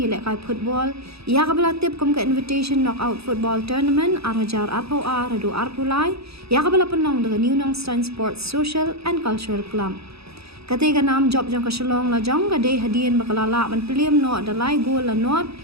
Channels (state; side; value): late; left; 0.78 ms